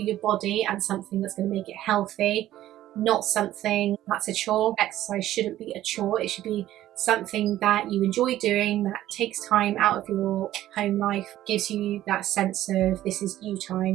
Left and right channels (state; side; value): quieter; left; 13.7 dB